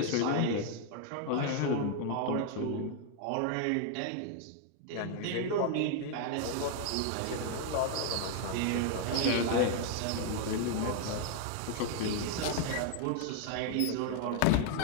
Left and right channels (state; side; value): different; both; correlation 0.00